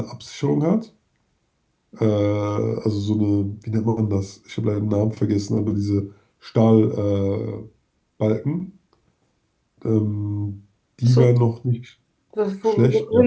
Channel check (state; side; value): identical; both; correlation 1.00